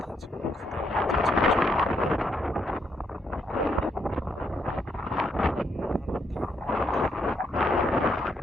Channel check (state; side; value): normal; both; correlation 0.75